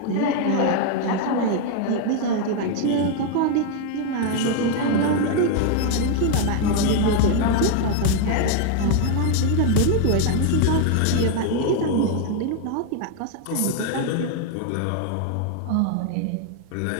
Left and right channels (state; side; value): different; both; correlation 0.00